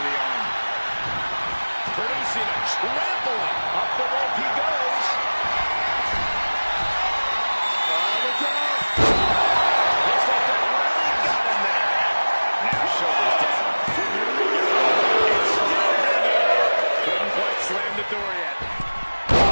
the arm. Producing a trampling. Up the rope he goes. Oh, look out. Looks like that really got him there. Now shoulders down. It's still hanging. Couldn't quite slam the door yet.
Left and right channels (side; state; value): both; inverted; correlation -1.00